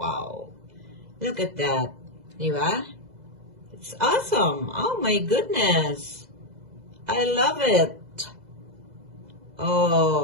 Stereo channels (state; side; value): late; left; 2.0 ms